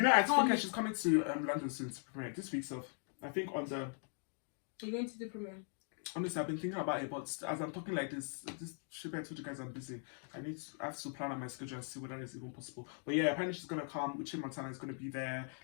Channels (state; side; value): silent; right; 51 dB below the other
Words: know, I think she's coming to London soon to premiere this week. So I think on the. Are you going to the premiere? Honestly, I've been thinking about it, but as I'm talking like this should I told you guys I'm busy. I have to plan on my schedule and see whether it's even possible. But yeah, apparently she's gonna come. Uche Montana is gonna be there.